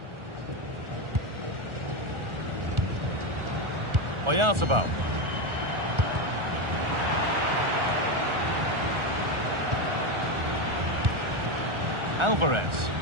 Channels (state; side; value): late; left; 1.4 ms